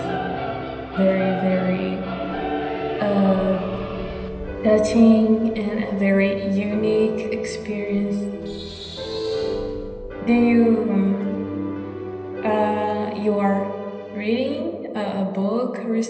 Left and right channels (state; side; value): identical; both; correlation 1.00